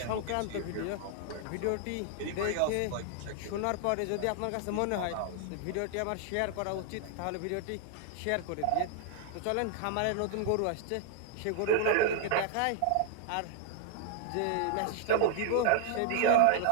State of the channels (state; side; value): different; both; correlation -0.01